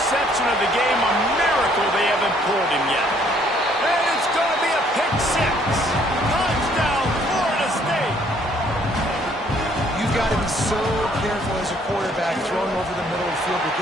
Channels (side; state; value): both; normal; correlation 0.63